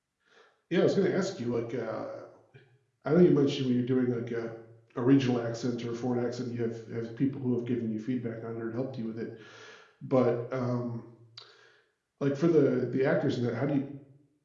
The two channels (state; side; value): identical; both; correlation 1.00